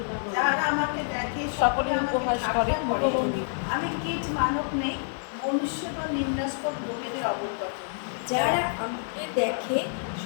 দেখে সকলে উপহাস করে। আমি কীট মানব নেই, মনুষ্য বা নিন্দাস্পদ লোকেদের অবজ্ঞাত। যারা আমাকে দেখে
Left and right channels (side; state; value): right; silent; digital silence